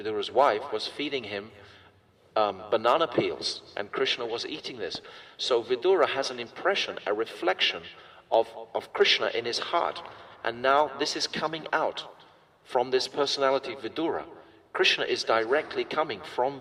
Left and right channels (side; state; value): both; identical; correlation 1.00